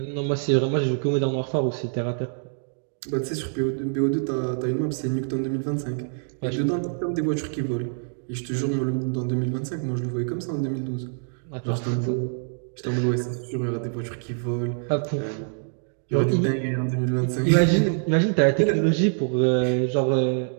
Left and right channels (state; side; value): silent; left; digital silence